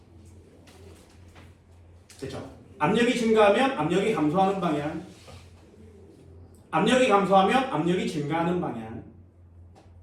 됐죠? 압력이 증가하면 압력이 감소하는 방향. 압력이 감소하면 압력이 증가하는 방향.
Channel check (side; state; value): both; identical; correlation 1.00